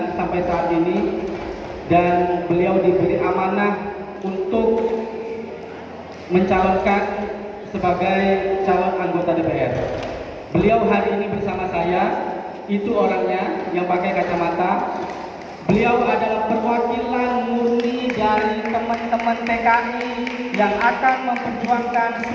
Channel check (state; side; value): identical; both; correlation 1.00